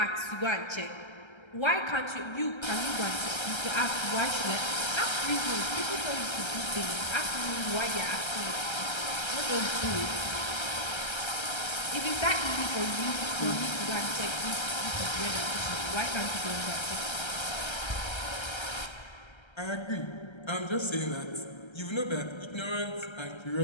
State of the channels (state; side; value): late; right; 1.3 ms